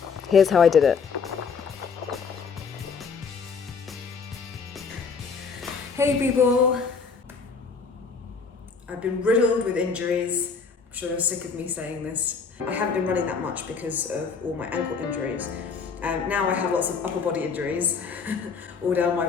Here's how I did it. Hey people! I've been riddled with injuries. I'm sure you're sick of me saying this. I haven't been running that much because of all my ankle injuries. Now I have lots of upper body injuries, all down my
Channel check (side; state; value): right; quieter; 5.4 dB